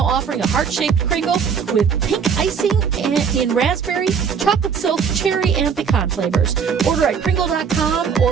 offering a heart-shaped Kringle with pink icing in raspberry, chocolate silk, cherry, and pecan flavors. Order at Kringle.com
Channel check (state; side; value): quieter; left; 6.6 dB